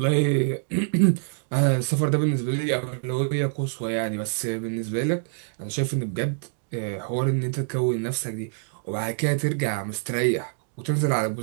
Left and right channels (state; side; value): silent; left; digital silence